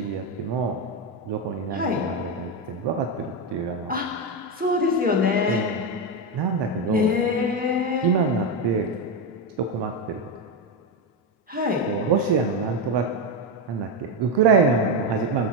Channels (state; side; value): normal; both; correlation 0.09